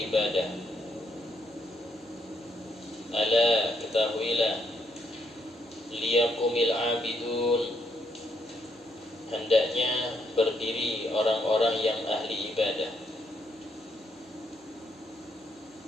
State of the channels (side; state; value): both; normal; correlation 0.74